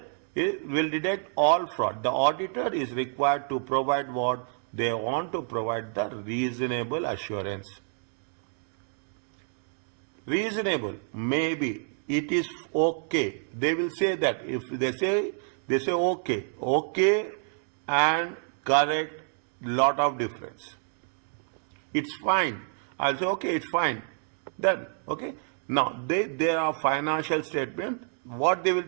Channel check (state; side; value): silent; left; 59 dB below the other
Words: It will detect all fraud. The auditor is required to provide what they want to provide, the reasonable assurance. Reasonable, maybe it is okay. They will say that. If they say okay and correct, lot of difference. It's fine. I'll say okay, it's fine. Then okay. Now there are financial statements. What they will